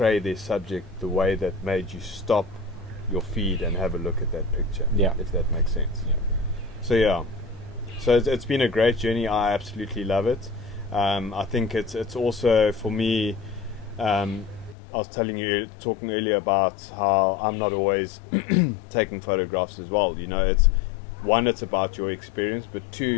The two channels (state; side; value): drops out; right; at 14.8 s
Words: their subject the way that made you stop your feed and have a look at that picture, if that makes sense. So it's been a great journey. I absolutely love it. I think it's also, for me, I was talking earlier about how I'm not always taking photographs as well. It's one, it's about your experience, but